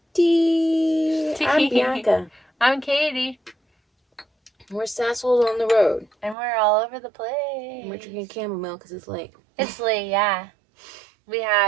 Tea. I'm Bianca. I'm Katie. We're sassholes on the road. And we're all over the place. And we're drinking chamomile because it's late. It's late, yeah. We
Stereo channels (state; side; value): drops out; left; at 6.4 s